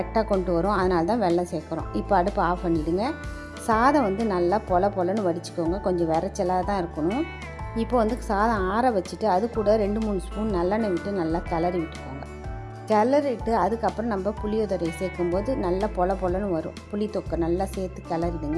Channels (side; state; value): both; identical; correlation 1.00